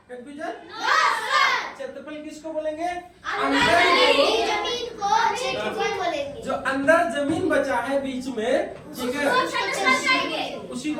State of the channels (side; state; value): both; identical; correlation 1.00